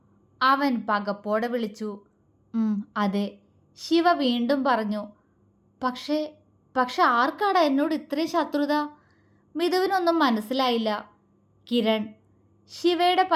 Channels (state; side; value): identical; both; correlation 1.00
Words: അവൻ പകപ്പോടെ വിളിച്ചു. അതെ, ശിവ വീണ്ടും പറഞ്ഞു. പക്ഷേ ആർക്കാടാ എന്നോട് ഇത്രയും ശത്രുത? മിഥുവിനൊന്നും മനസ്സിലായില്ല. കിരൺ. ശിവയുടെ